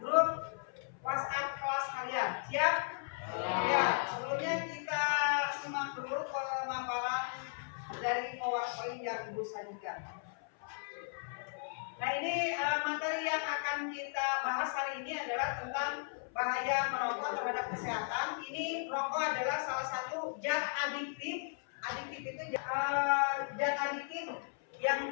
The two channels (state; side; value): silent; right; 54 dB below the other